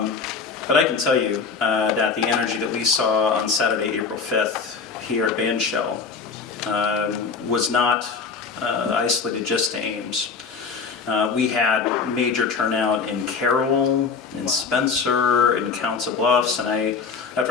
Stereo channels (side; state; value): right; quieter; 5.2 dB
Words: I can tell you that the energy that we saw on Saturday, April 5th, here at Bandshell was not isolated just to Ames. We had major turnout in Carroll, in Spencer, in Council Bluffs, and